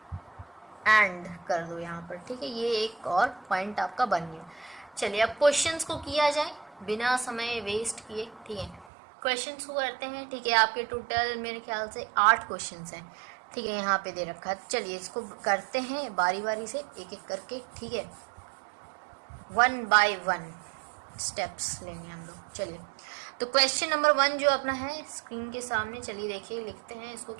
एंड कर दो यहाँ पर, ठीक है, ये एक और पॉइंट आपका बन गया। चलिए अब क्वेश्चंस को किया जाए बिना समय वेस्ट किए, ठीक है। क्वेश्चंस को करते हैं, ठीक है, आपके टोटल मेरे ख्याल से 8 क्वेश्चंस हैं, ठीक है, यहाँ पे दे रखा है। चलिए इसको करते हैं बारी बारी से, एक एक करके, ठीक है, 1 बाय 1 स्टेप्स लेंगे हम लोग। चलिए तो क्वेश्चन नंबर 1 जो अपना है स्क्रीन के सामने, चलिए देखिए, लिखते हैं इसको,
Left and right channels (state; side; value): drops out; left; at 8.8 s